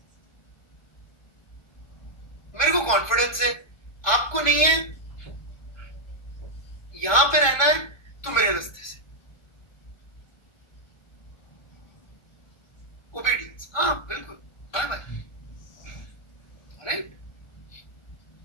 मेरे को कॉन्फिडेंस है, आपको नहीं है। यहां पे रहना है तो मेरे रास्ते से, ओबीडियंस, हाँ बिल्कुल, बाय बाय, राइट।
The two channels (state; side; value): late; right; 1.5 ms